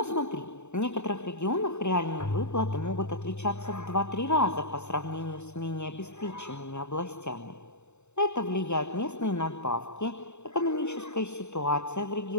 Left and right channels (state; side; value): late; right; 0.82 ms